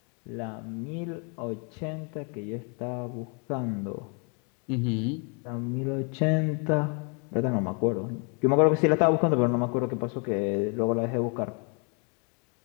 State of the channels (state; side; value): quieter; right; 36.6 dB